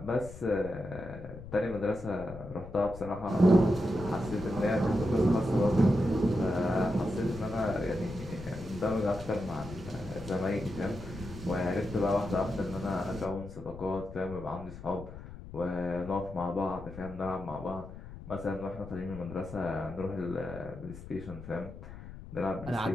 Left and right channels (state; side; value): noise; left; rumble, 13 dB below the sound